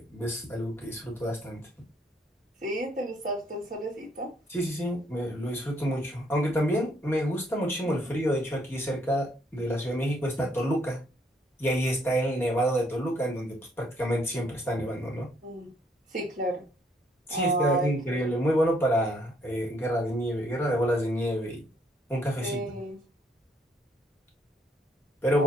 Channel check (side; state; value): both; normal; correlation 0.69